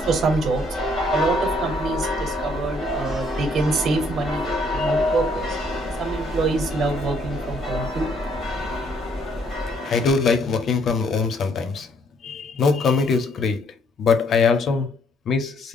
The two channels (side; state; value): both; normal; correlation 0.67